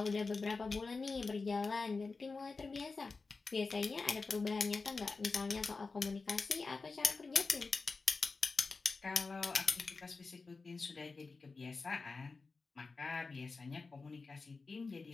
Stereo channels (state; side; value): quieter; right; 4.2 dB